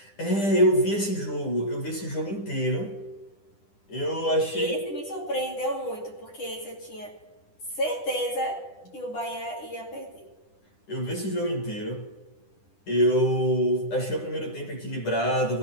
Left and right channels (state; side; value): late; right; 10 ms